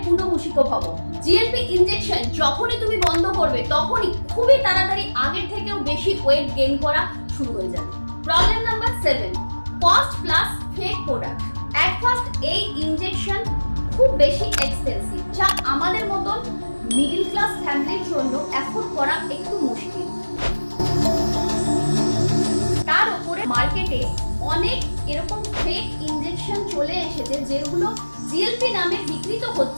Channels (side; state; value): both; inverted; correlation -1.00